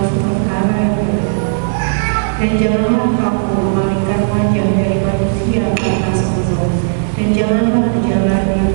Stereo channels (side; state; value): left; silent; digital silence